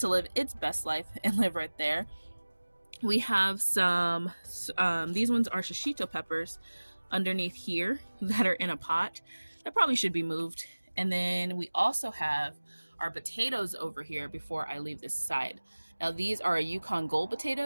live its best life and live right there. We have some, these ones are shishito peppers underneath here that are in a pot. That probably should be moved. And then we also have our potatoes over here before I leave this side. Now these are Yukon Gold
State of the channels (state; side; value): inverted; both; correlation -1.00